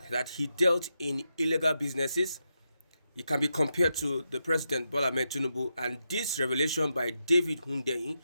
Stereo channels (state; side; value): inverted; both; correlation -0.86